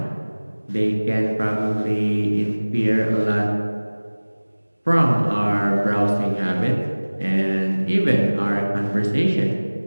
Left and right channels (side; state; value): both; inverted; correlation -1.00